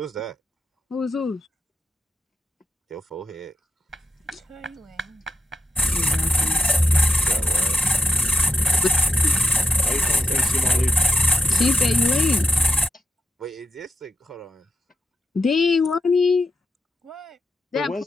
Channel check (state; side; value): normal; both; correlation 0.85